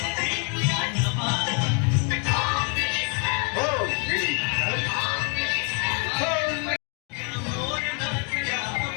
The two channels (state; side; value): quieter; right; 38.5 dB